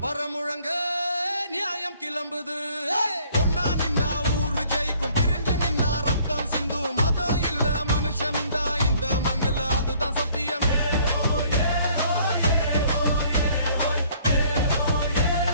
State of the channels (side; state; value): both; inverted; correlation -0.59